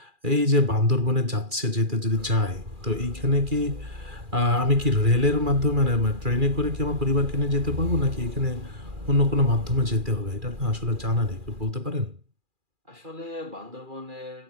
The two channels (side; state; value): left; late; 2.4 ms